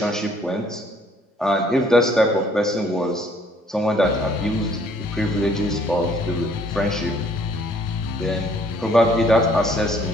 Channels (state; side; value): normal; both; correlation 0.61